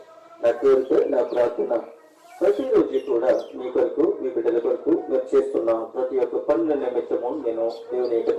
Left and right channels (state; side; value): identical; both; correlation 1.00